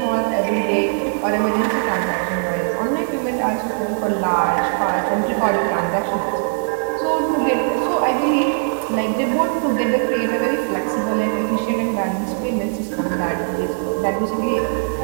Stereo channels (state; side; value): silent; left; digital silence